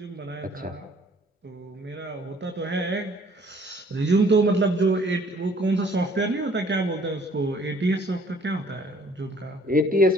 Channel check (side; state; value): both; normal; correlation 0.58